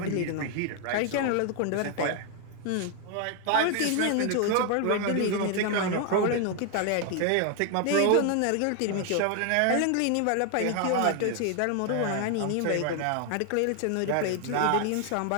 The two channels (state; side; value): different; both; correlation 0.00